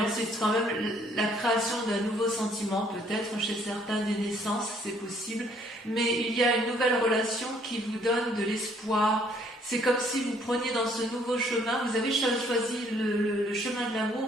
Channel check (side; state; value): both; normal; correlation 0.63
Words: C'est quand même la création d'un nouveau sentiment, peut-être chez certains des naissances, c'est possible. Mais il y a une nouvelle relation qui vous donne de l'espoir. C'est comme si vous preniez dans ce nouveau chemin, vous avez choisi le chemin de